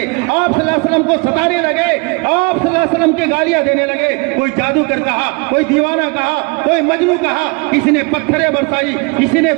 آپ صلی اللہ علیہ وسلم کو ستانے لگے, آپ صلی اللہ علیہ وسلم کے گالیاں دینے لگے. کوئی جادوگر کہا, کوئی دیوانہ کہا, کوئی مجنوں کہا, کسی نے پتھریں برسائی, کسی نے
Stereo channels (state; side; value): quieter; left; 30.1 dB